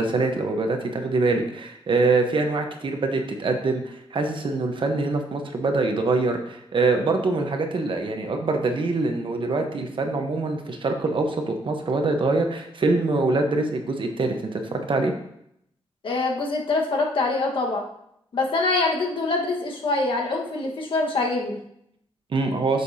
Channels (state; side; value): normal; both; correlation 0.63